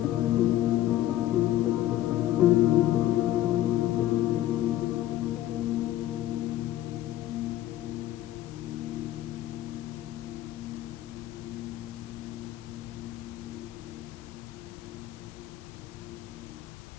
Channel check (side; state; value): right; quieter; 13.8 dB